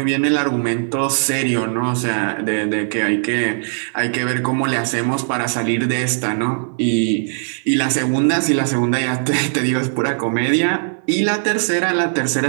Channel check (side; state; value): left; silent; 57 dB below the other